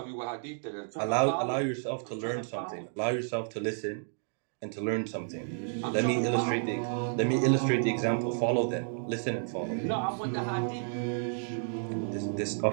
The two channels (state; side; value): silent; left; digital silence